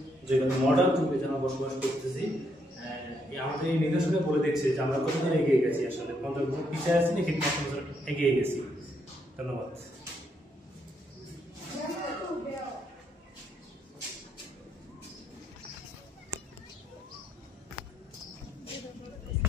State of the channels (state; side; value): normal; both; correlation 0.75